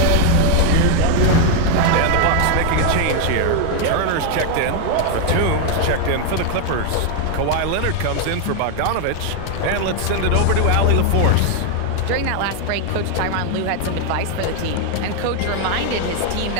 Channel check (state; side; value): different; both; correlation 0.00